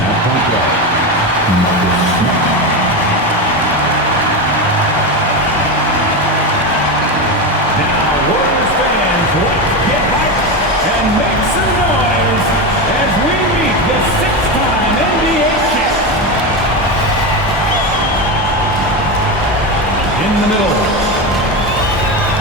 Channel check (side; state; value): both; normal; correlation 0.16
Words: At point guard, Marcus Smart. Now, Warriors fans, let's get hyped and make some noise as we meet the six-time NBA champ. In the middle.